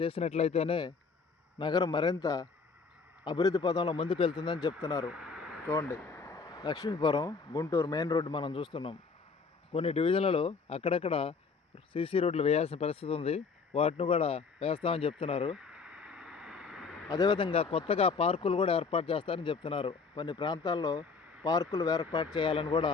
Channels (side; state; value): right; quieter; 4.9 dB